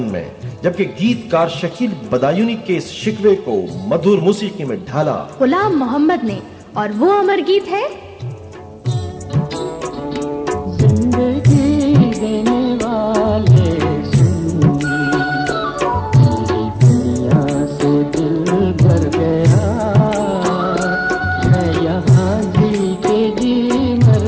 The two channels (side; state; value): both; identical; correlation 1.00